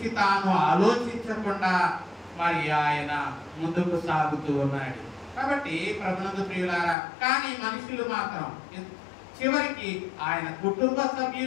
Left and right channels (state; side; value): drops out; right; at 7.0 s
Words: తాను ఆలోచించకుండా మరి ఆయన ముందుకు సాగుతూ ఉన్నాడు. కాబట్టి ప్రభునందు ప్రియులారా, కానీ మనుషులు మాత్రం చివరికి ఆయన కుటుంబ